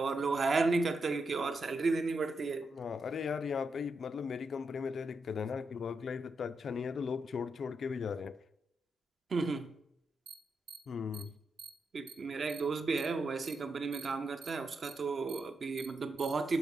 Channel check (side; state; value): both; normal; correlation 0.84